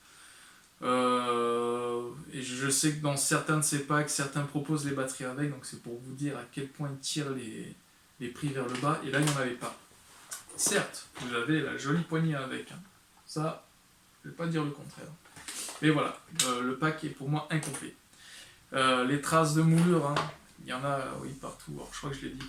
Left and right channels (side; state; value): both; identical; correlation 1.00